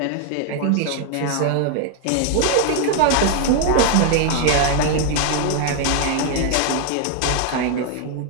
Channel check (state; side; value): different; both; correlation 0.00